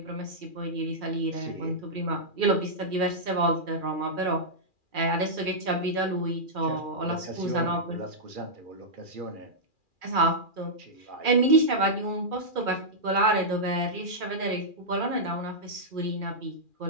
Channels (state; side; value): late; left; 2.4 ms